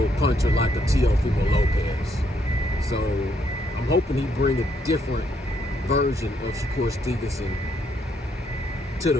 puncher like a Teofimo Lopez. So I'm hoping he bring a different version of Shakur Stevenson to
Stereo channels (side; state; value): both; normal; correlation 0.73